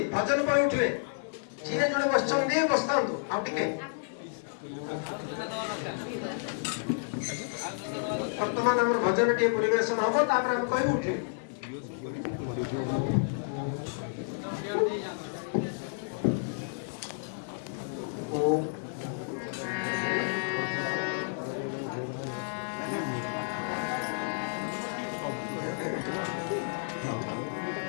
भजन पर उठिले जी जोड़े बस बसता बर्तमान आम भजन टे परिवेशन हम कह उठे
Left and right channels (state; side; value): silent; right; 57 dB below the other